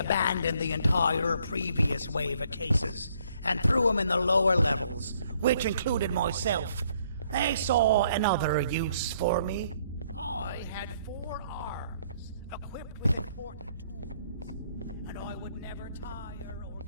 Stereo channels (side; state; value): both; inverted; correlation -0.67